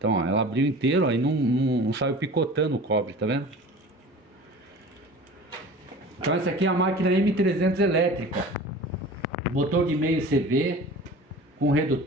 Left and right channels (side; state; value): both; normal; correlation 0.39